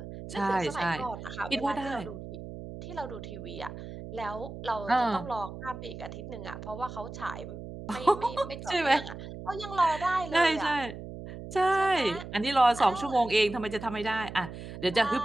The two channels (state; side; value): noise; right; hum, 11 dB below the sound